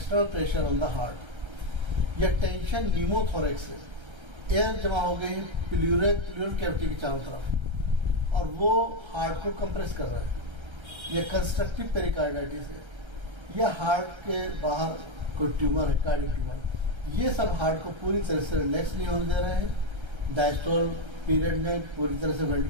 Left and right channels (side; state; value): left; late; 1.3 ms